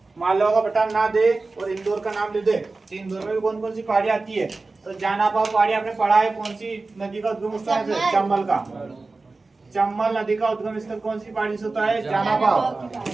मालवा का पठार ना दे और इंदौर का नाम ले दे, तो इंदौर में भी कौन कौन सी पहाड़ी आती है? तो जानापाव पहाड़ी आपने पढ़ा है। कौन सी नदी का उद्गम स्थल है? चंबल का। चंबल नदी का उद्गम स्थल कौन सी पहाड़ी से होता है? जानापाव।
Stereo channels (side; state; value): left; quieter; 3.6 dB